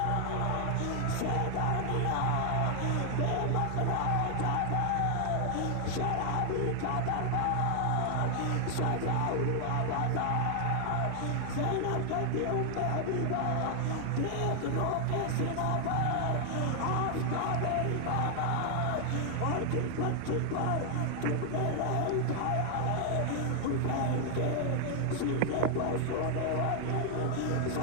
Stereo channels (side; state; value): both; different; correlation 0.00